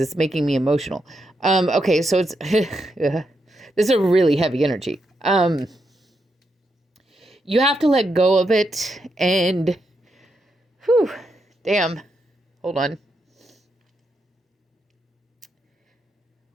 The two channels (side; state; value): both; normal; correlation 0.82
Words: it's making me emotional. Okay, so it's this is a really heavy energy. You have to let go of it, and whew, damn, hold on.